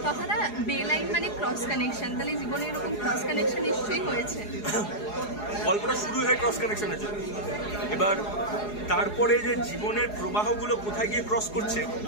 কথাটা বেলাইন মানে ক্রস কানেকশন, তাহলে জীবনে এরকম ক্রস কানেকশন নিশ্চয়ই হয়েছে। গল্পটা শুরু হয় ক্রস কানেকশনের জন্য, এবার তারপরে যে জীবনের প্রবাহগুলো কোথায় গিয়ে ক্রস করছে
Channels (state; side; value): late; right; 4.8 ms